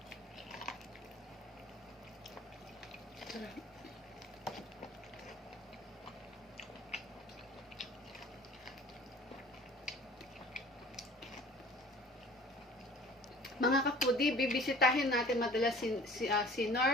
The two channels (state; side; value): normal; both; correlation 0.47